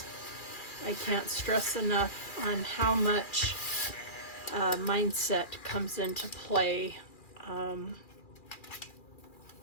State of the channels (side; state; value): right; late; 2.4 ms